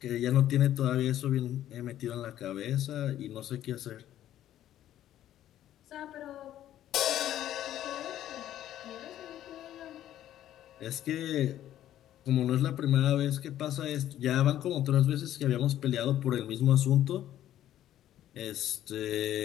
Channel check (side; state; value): right; quieter; 12.2 dB